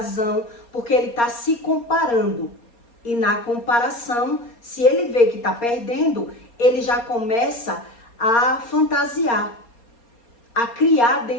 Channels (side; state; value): right; late; 4.3 ms